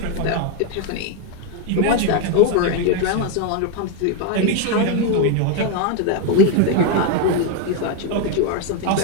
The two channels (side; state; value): both; different; correlation 0.01